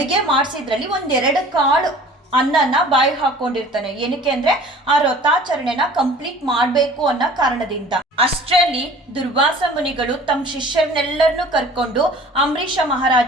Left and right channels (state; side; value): normal; both; correlation 0.47